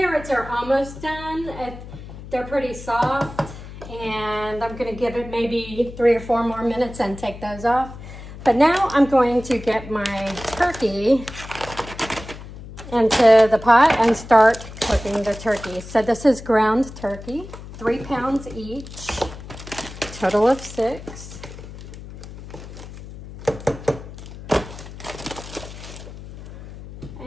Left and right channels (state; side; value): noise; left; hum, 14 dB below the sound